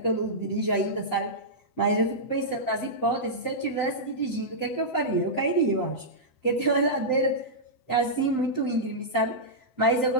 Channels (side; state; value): right; late; 7.8 ms